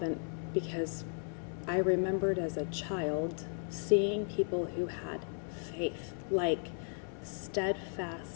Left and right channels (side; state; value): right; silent; 54 dB below the other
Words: because I remembered as a child seeing people who had faith, like